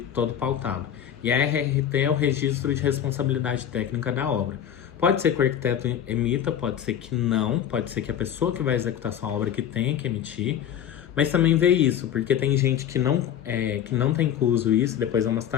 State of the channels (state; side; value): quieter; right; 9.6 dB